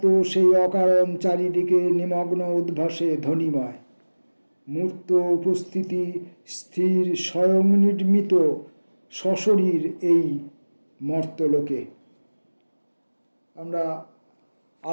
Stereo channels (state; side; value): inverted; both; correlation -1.00